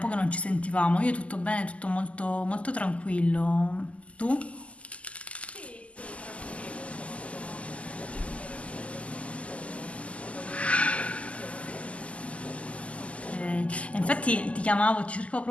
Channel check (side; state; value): right; late; 0.063 ms